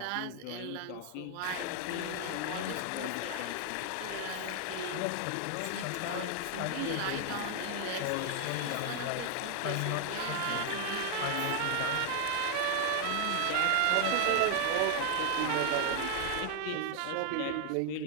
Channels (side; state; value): both; different; correlation 0.00